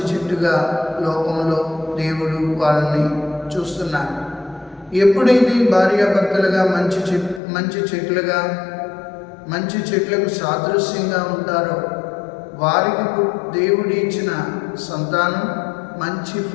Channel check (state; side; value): drops out; right; at 7.4 s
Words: చెట్టుగా లోకంలో దేవుడు వాళ్ళని చూస్తున్నారు. ఎప్పుడైతే భార్యాభర్తలుగా మంచి చెట్లుగా, మంచి చెట్లకు సాదృశ్యంగా ఉంటారో వారికి దేవుడు ఇచ్చిన సంతానం మంచి